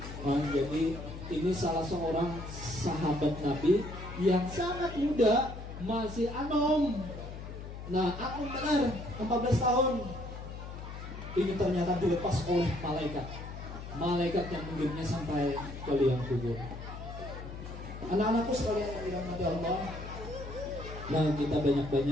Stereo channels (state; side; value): noise; left; hum, 10 dB below the sound